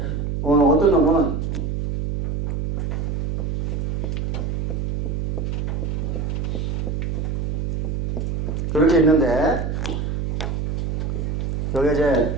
어떤 놈은 그렇게 있는데 여기 이제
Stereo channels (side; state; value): right; noise; hum, 1 dB below the sound